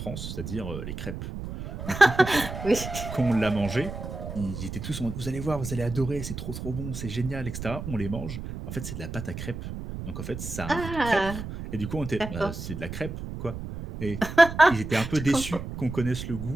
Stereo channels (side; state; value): right; noise; rumble, 8 dB below the sound